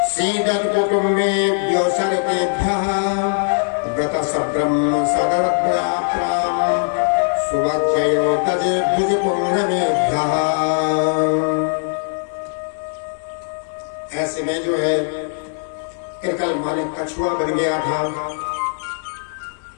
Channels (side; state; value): right; silent; 66 dB below the other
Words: सीदन कुटुम्बेभ्यो सर्वेभ्यः व्रत सब्रह्म सदरत्नाप्राम सुभक्षयो तजे भुज पुण्यमेभ्यः। ऐसे में जो है कृकल माने कछुआ बन गया था।